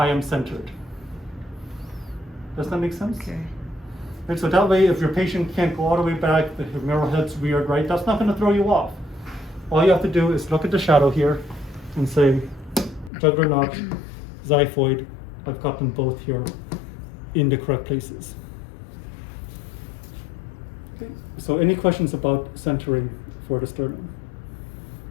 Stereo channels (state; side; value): drops out; right; at 13.1 s